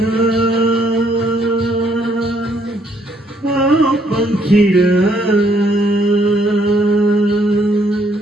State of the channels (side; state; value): both; normal; correlation 0.69